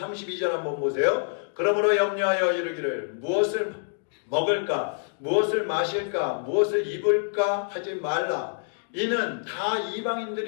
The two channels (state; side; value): silent; right; digital silence